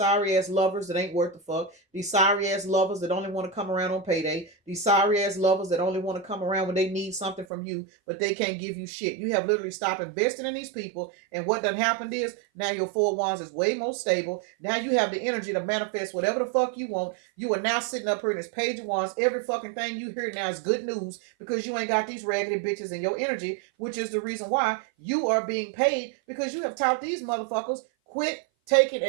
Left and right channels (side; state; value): left; drops out; at 7.5 s